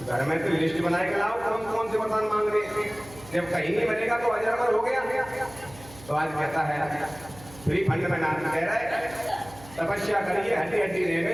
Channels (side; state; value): right; noise; hum, 19 dB below the sound